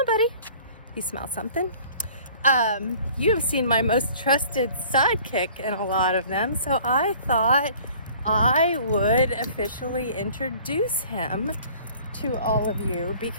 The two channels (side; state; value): both; inverted; correlation -0.51